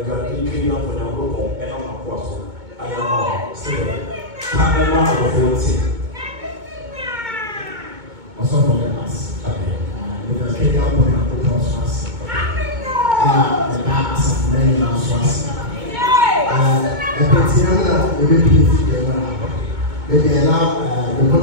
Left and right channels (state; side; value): late; left; 2.2 ms